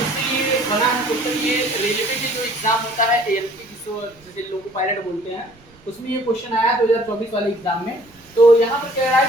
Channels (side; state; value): right; noise; rumble, 28 dB below the sound